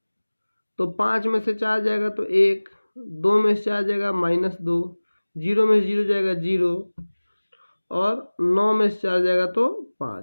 तो 5 में से 4 जाएगा तो 1, 2 में से 4 जाएगा -2, 0 में से 0 जाएगा 0 और 9 में से 4 जाएगा तो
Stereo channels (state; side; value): inverted; both; correlation -1.00